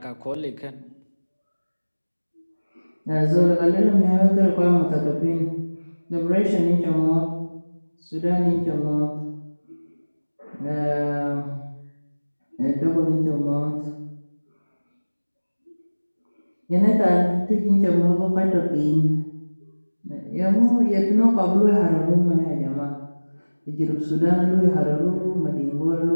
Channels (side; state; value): both; inverted; correlation -1.00